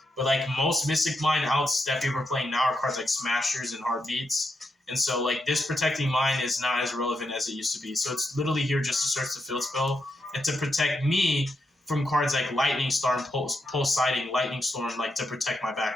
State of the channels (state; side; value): normal; both; correlation 0.83